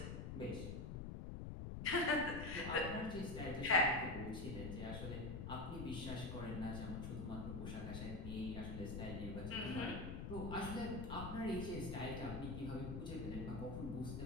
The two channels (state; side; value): noise; left; rumble, 5 dB below the sound